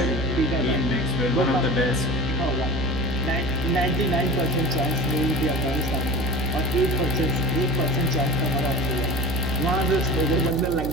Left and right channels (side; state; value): right; noise; hum, 4 dB below the sound